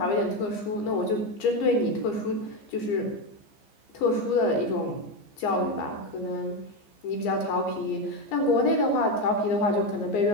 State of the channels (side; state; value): right; late; 15 ms